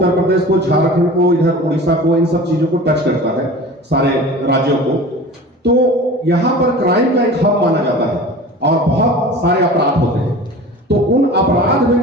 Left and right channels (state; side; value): normal; both; correlation 0.38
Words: प्रदेश को, झारखंड को, इधर उड़ीसा को, इन सब चीजों को टच करता है, सारे राज्यों को। तो यहाँ पर क्राइम का एक हब माना जाता है और बहुत सारे अपराध होते हैं। तो उन अपराध में